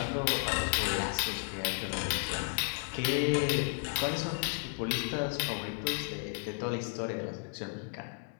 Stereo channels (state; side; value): silent; right; 56 dB below the other